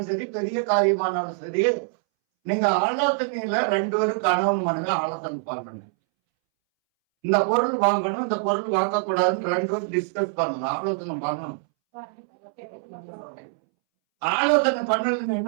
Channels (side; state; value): left; silent; 62 dB below the other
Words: சரி, பெரிய காரியமானாலும் சரி, நீங்க ஆலோசனையில 2 பேரும் கணவன் மனைவி ஆலோசனை பண்ணணும். இந்த பொருள் வாங்கணும், இந்த பொருள் வாங்க கூடாதுன்னு 2 பேரும் டிஸ்கஸ் பண்ணணும், ஆலோசனை பண்ணணும். ஆலோசனை பண்ணலன்னு